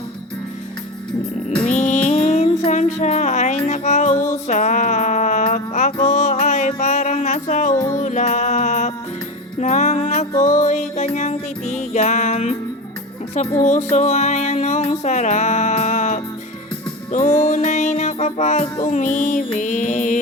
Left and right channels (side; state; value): both; normal; correlation 0.24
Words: Minsan siya ay nakausap, ako ay parang nasa ulap. Nang ako'y kanyang titigan, sa puso ay anong sarap. Tunay na kapag